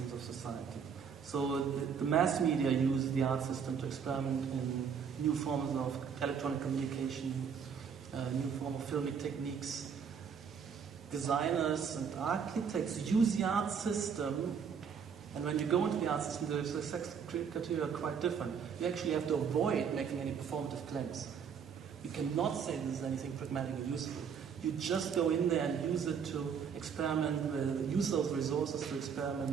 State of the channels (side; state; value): left; quieter; 6.9 dB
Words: of society. So the mass media use the art system to experiment in new forms of electronic communication, new form of filmic techniques. Designers and architects use the art system, and when you go into the art system, the success criteria are quite different. You actually have to avoid making any performative claims. You cannot say this is anything pragmatic or useful. You just go in there and use it to experiment with, use those resources to